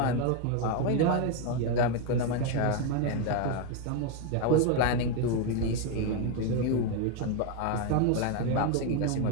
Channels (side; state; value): both; different; correlation 0.02